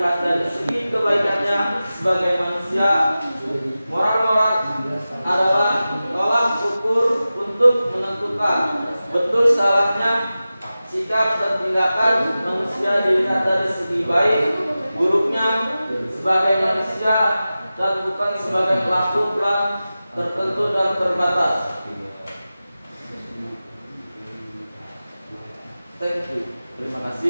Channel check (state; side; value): inverted; both; correlation -0.95